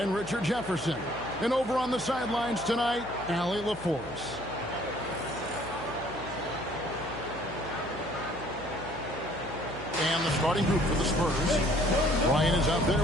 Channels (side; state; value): left; noise; hum, 17 dB below the sound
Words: Richard Jefferson. And over on the sidelines tonight, Allie LaForce. And the starting group for the Spurs. Ryan is out there